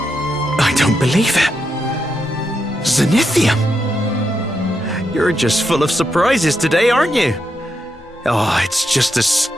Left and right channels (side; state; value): both; normal; correlation 0.83